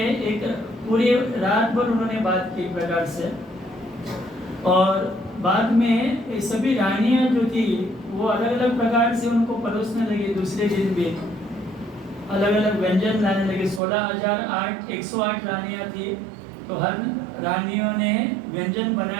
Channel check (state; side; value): drops out; left; at 13.8 s